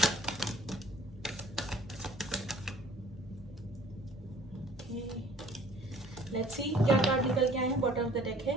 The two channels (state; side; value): normal; both; correlation 0.53